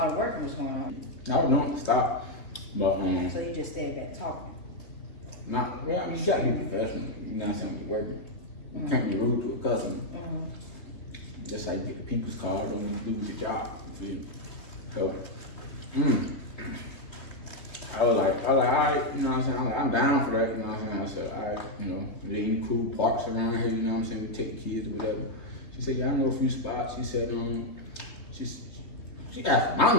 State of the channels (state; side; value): late; right; 3.5 ms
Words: of working was going on. I was doing to stop, but So you just stayed back talking. well, I mean, you gotta be professional. You know what I'm saying? When you're working, you can't be rude to a customer. Just like you get the people's card, don't want to do your job. You feel me? So, I was like, all right, you know what I'm saying? I'm down for that, you know what I'm saying? I said, all right, you know, there any cool parks around here, you know what I'm saying? We take the kids or whatever. She said, yeah, I know a few spots. She said, She asked for my